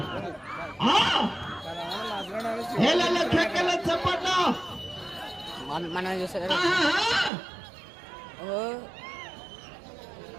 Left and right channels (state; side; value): drops out; left; at 7.3 s